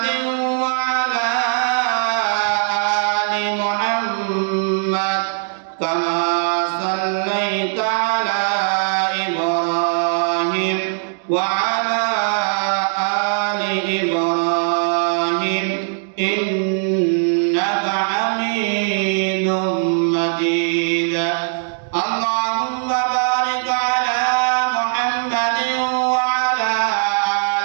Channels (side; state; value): left; silent; digital silence